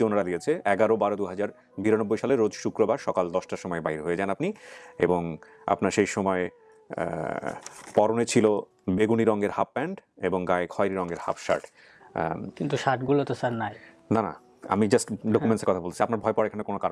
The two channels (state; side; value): identical; both; correlation 1.00